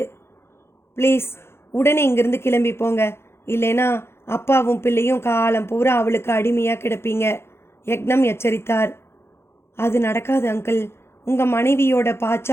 ப்ளீஸ் உடனே இங்கிருந்து கிளம்பி போங்க, இல்லைனா அப்பாவும் பிள்ளையும் காலம் பூரா அவளுக்கு அடிமையாக கிடப்பீங்க, யக்னம் எச்சரித்தார். அது நடக்காது அங்கிள். உங்கள் மனைவியோட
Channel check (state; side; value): late; right; 0.12 ms